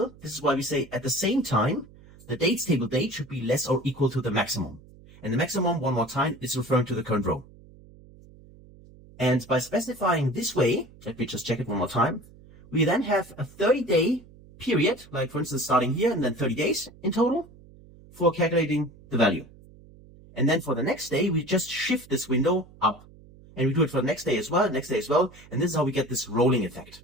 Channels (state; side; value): noise; right; hum, 23 dB below the sound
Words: this is why we say at the same time, the dates table date should be less or equal to the maximum. And the maximum, one more time, is referring to the current row. And by specifying this way, let me just check it one more time, we then have a 30-day period, like for instance starting here and then 30 days in total, for calculating the value. And then for the next day, we just shift this window up. And we do it for the next day as well, and this is how we get this rolling effect.